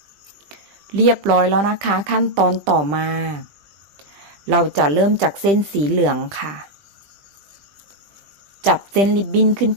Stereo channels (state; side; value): late; left; 20 ms